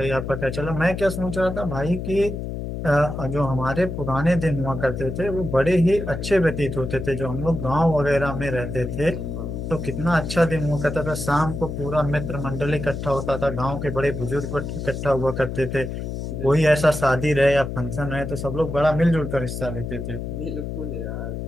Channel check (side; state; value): left; noise; hum, 5 dB below the sound